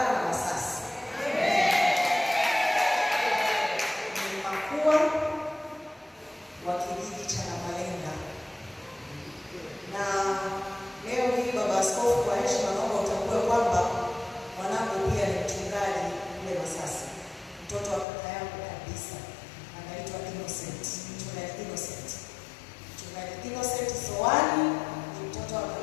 na Masasi. Ni makua wa kijiji cha Namalenga. Na leo hii baba askofu, kwa heshima naomba utambue kwamba mwanangu pia ni mchungaji kule Masasi. Mtoto wa kaka yangu kabisa anaitwa Innocent. Mchungaji Innocent. Mchungaji Innocent Soani ni mtoto wa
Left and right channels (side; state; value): right; drops out; at 18.1 s